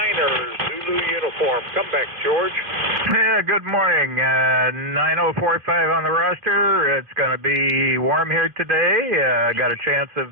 Zulu uniform. Come back, George. Yeah, good morning. 9045 on the roster. It's going to be warm here today. Got a chance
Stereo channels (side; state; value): left; late; 2.5 ms